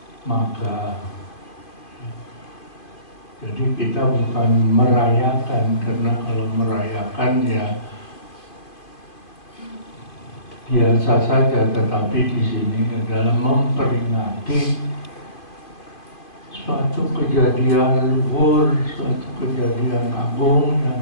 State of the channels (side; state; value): right; late; 2.4 ms